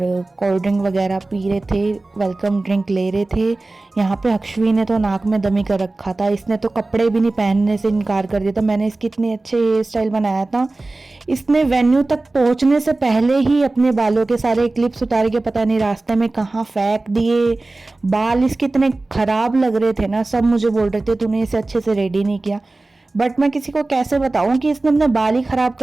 कोल्ड ड्रिंक वगैरह पी रहे थे, वेलकम ड्रिंक ले रहे थे। यहाँ पे अक्षवी ने तो नाक में दमी कर रखा था, इसने तो कपड़े भी नहीं पहनने से इनकार कर दिया था। मैंने इसकी इतने अच्छे हेयर स्टाइल बनाया था, इसने वेन्यू तक पहुँचने से पहले ही अपने बालों के सारे क्लिप्स उतार के पता नहीं रास्ते में कहाँ फेंक दिए। बाल इसके इतने ख़राब लग रहे थे ना, सब मुझे बोल रहे थे तूने इसे अच्छे से रेडी नहीं किया। बट मैं किसी को कैसे बताऊं कि इसने अपने बाल ही खराब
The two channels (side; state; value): left; quieter; 3.1 dB